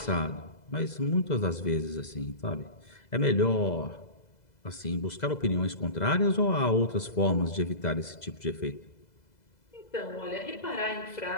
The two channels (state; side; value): late; right; 2.0 ms